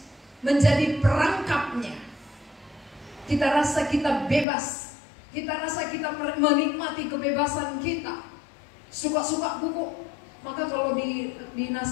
menjadi perangkapnya. Kita rasa kita bebas. Kita rasa kita menikmati kebebasan kita. Suka-suka buku. Maka kalau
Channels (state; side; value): drops out; right; at 4.5 s